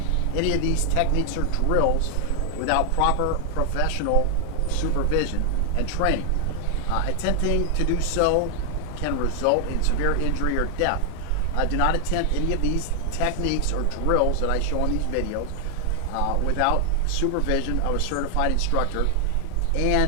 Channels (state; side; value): different; both; correlation 0.00